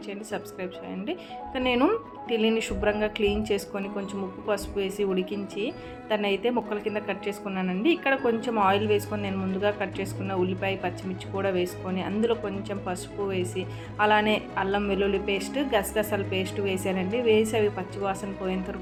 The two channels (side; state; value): both; identical; correlation 1.00